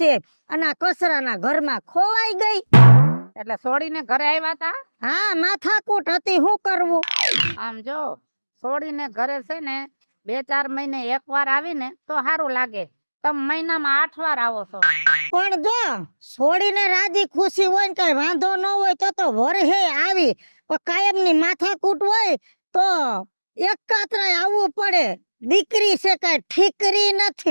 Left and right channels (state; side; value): inverted; both; correlation -1.00